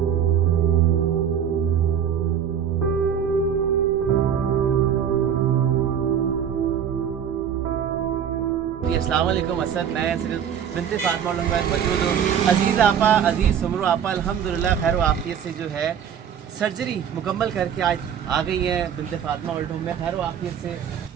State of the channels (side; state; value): left; quieter; 8.5 dB